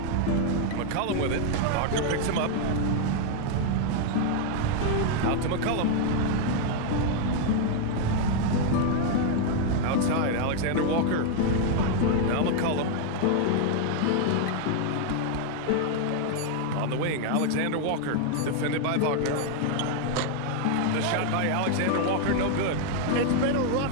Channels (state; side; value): different; both; correlation 0.00